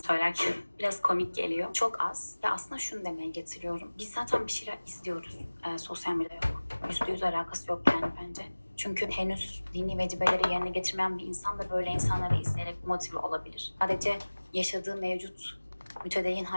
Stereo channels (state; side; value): inverted; both; correlation -1.00